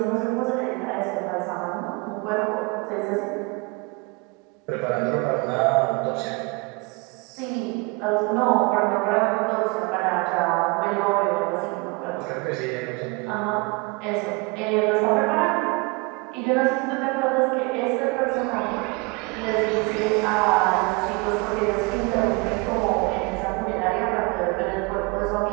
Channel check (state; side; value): quieter; left; 28.0 dB